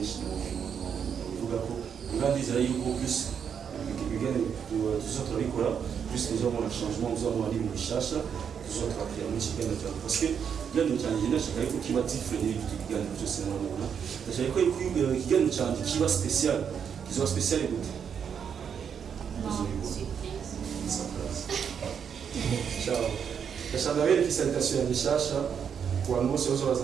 kuvuga ko ngandizera yuko plus ibiganiro tuzotora bikora plus tuzabona changement tuzabona ari bishasha tuzotora kuri mu kiganiro cyawe parce que ikiganiro cyanjye ndashaka yuko kiba different n'ibindi biganiro byose murabona ndashaka ko ikiganiro cyanjye kiba special kizoba special gute ciao ndashaka bereka salutation yanjye shasha ku bantu bose baza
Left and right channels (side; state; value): left; quieter; 7.5 dB